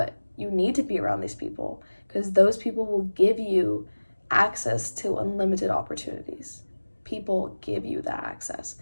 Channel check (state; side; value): inverted; both; correlation -1.00